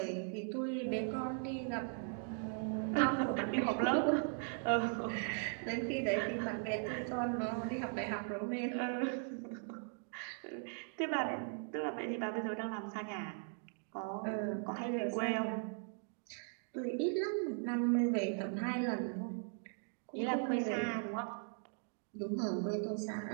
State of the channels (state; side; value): silent; left; 52 dB below the other